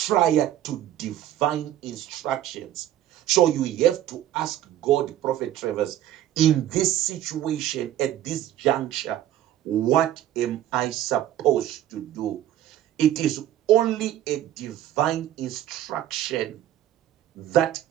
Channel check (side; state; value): left; quieter; 12.3 dB